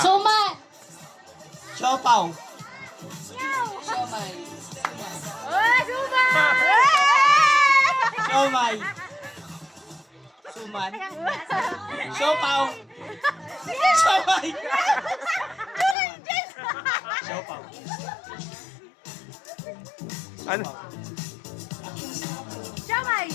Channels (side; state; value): right; drops out; at 16.0 s